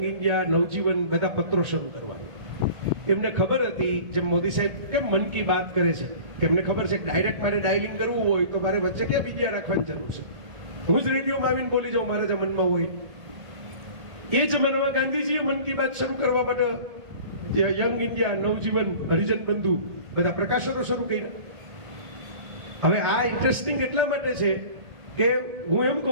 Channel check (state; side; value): late; left; 1.7 ms